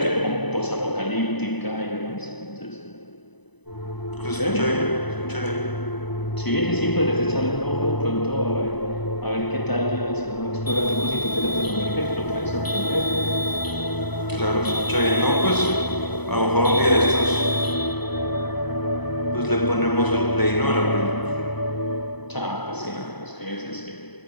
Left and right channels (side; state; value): right; late; 1.0 ms